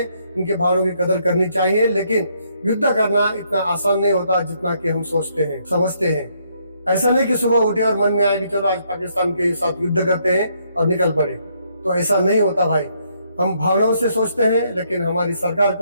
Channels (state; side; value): inverted; both; correlation -0.72